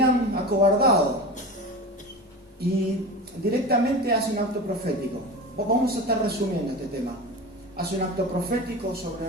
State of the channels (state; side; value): normal; both; correlation 0.29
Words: acobardado. Y directamente hace un acto profético. Vamos a estar resumiendo este tema. Hace un acto profético sobre